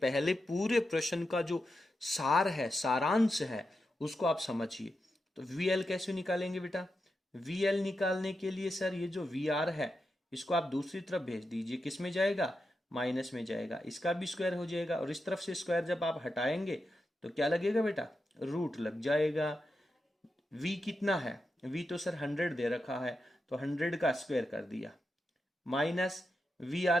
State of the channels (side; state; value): both; normal; correlation 0.88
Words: पहले पूरे प्रश्न का जो सार है, सारांश है, उसको आप समझिए। तो VL कैसे निकालेंगे बेटा, VL निकालने के लिए सर ये जो VR है इसको आप दूसरी तरफ भेज दीजिए, किस में जाएगा, माइनस में जाएगा, इसका भी स्क्वायर हो जाएगा, और इस तरफ से स्क्वायर जब आप हटाएंगे तो क्या लगेगा बेटा, रूट लग जाएगा। V कितना है, V तो सर 100 दे रखा है, तो 100 का स्क्वायर कर दिया, माइनस